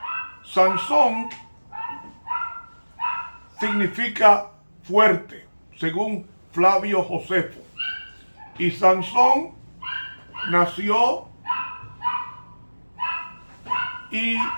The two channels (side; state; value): both; inverted; correlation -1.00